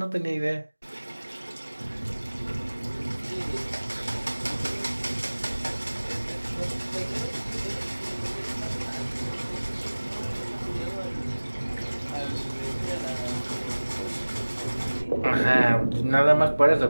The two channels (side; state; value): both; inverted; correlation -1.00